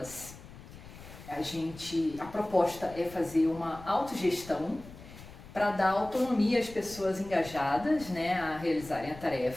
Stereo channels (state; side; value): noise; left; rumble, 17 dB below the sound